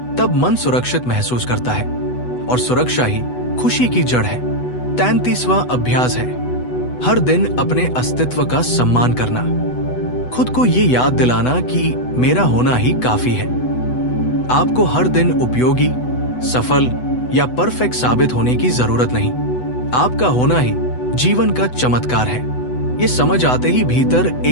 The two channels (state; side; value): late; right; 8.1 ms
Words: तब मन सुरक्षित महसूस करता है, और सुरक्षा ही खुशी की जड़ है। 33वां अभ्यास है हर दिन अपने अस्तित्व का सम्मान करना। खुद को ये याद दिलाना कि मेरा होना ही काफी है। आपको हर दिन उपयोगी, सफल या परफेक्ट साबित होने की जरूरत नहीं। आपका होना ही जीवन का चमत्कार है। ये समझ आते ही भीतर